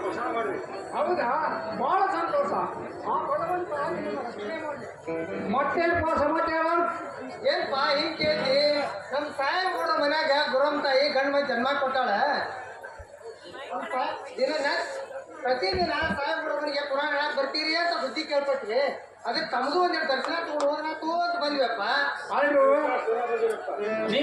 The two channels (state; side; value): identical; both; correlation 1.00